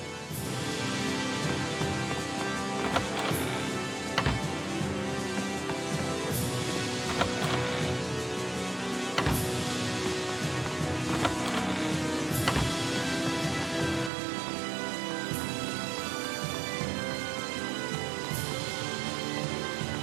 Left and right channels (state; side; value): drops out; left; at 14.1 s